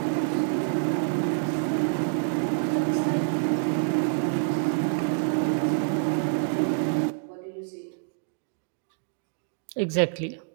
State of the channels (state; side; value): silent; left; digital silence